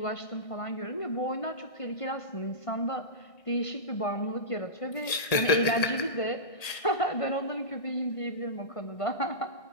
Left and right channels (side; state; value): right; late; 1.6 ms